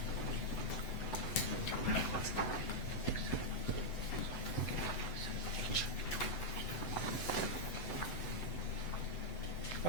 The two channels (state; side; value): late; right; 7.9 ms